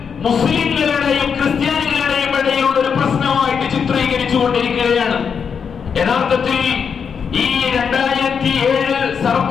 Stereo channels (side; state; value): right; quieter; 6.6 dB